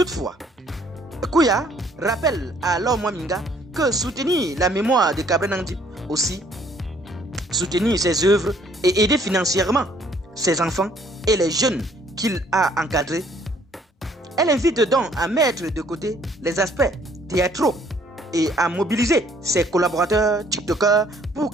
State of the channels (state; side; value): normal; both; correlation 0.62